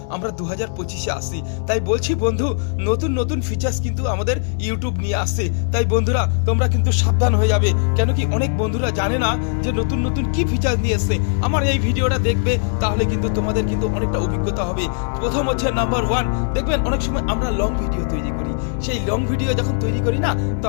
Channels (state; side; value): silent; right; digital silence